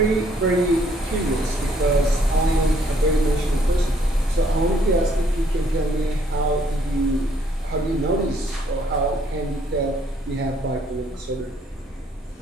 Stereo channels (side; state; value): both; normal; correlation 0.66